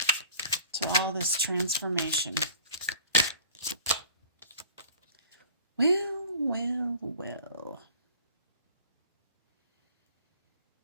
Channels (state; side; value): inverted; both; correlation -0.45